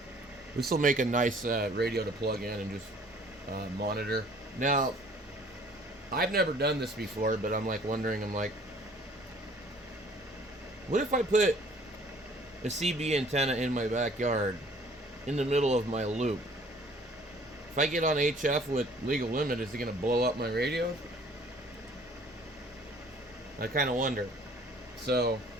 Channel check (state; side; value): normal; both; correlation 0.55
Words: this will make a nice radio to plug in and just monitor. Now, I've never done this before, but I'm like wondering, what if I put a CB antenna in my backyard in the middle of my loop? If I get on HF with legal limit, is it going to blow up my radio? I kind of wonder. So,